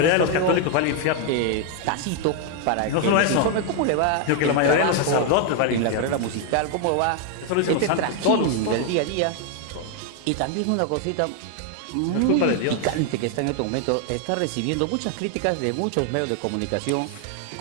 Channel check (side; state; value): both; different; correlation 0.00